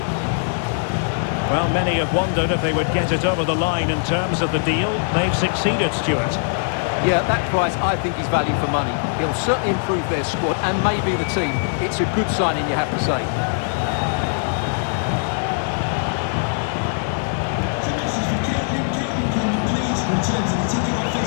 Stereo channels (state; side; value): silent; right; 58 dB below the other